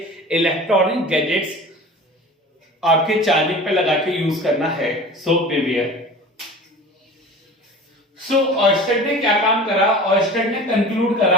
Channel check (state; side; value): normal; both; correlation 0.38